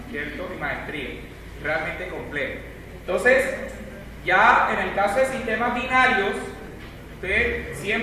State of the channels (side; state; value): both; identical; correlation 1.00